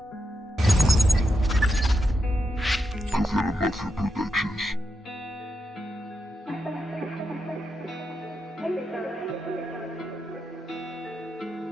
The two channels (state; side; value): normal; both; correlation 0.85